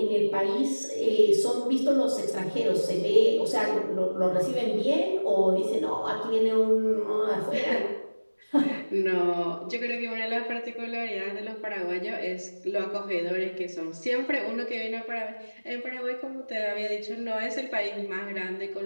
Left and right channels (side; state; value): both; inverted; correlation -1.00